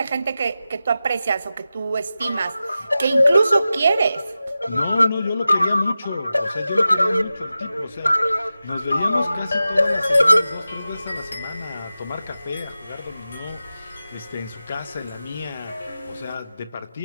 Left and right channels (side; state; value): both; inverted; correlation -0.93